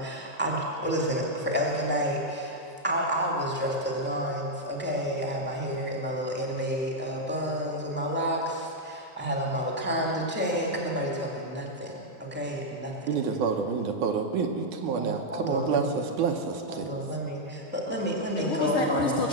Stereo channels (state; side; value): normal; both; correlation -0.03